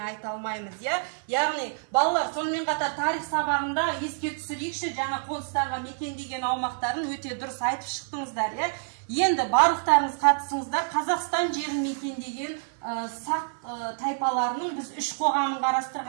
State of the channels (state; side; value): silent; left; 57 dB below the other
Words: айта алмаймыз. Яғни, балалар, сонымен қатар тарих сабағында еске түсірейікші, жаңа қоныстарға мекендеген аумақтарын өте дұрыс айтып шықтыңыздар. Енді барлықтарыңыз қатысыңыздар. Қазақстан жерін мекендеген сақ тайпаларының біз үш қоғамын